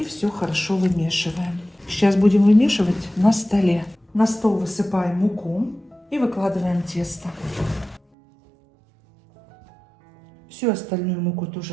все хорошо вымешиваем. Сейчас будем вымешивать на столе. На стол высыпаем муку и выкладываем тесто. Всю остальную муку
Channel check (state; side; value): drops out; left; at 8.0 s